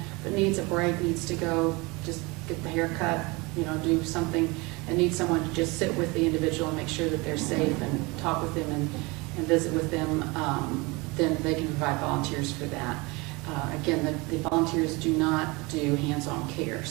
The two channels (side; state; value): left; quieter; 25.5 dB